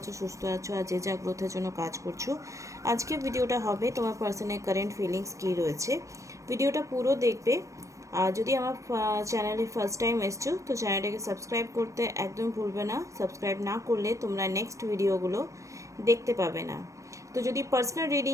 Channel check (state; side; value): late; left; 0.15 ms